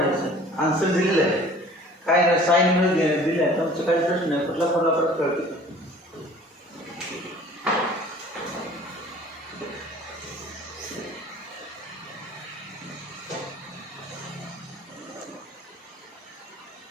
आन्सर दिलेलं आहे काय नाही साईन मध्ये दिलं आहे तुमचं काही प्रश्न नाही कुठला फॉर्म्युला परत कळतो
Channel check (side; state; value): both; normal; correlation 0.49